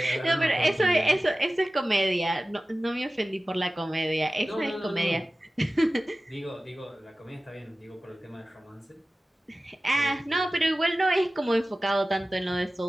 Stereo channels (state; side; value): normal; both; correlation 0.96